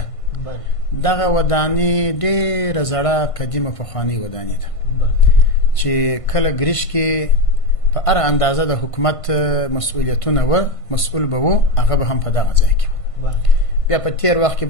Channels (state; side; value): late; right; 1.5 ms